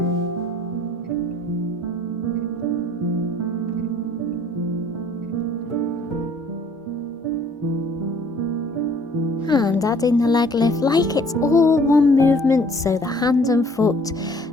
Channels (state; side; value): normal; both; correlation 0.57